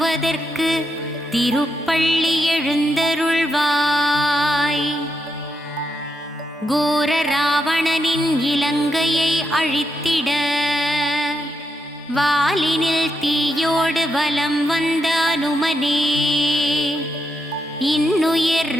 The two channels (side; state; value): both; normal; correlation 0.82